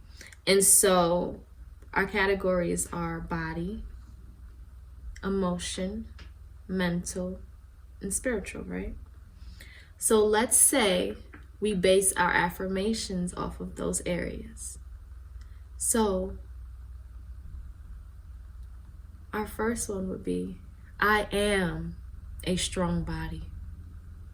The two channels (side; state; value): both; identical; correlation 1.00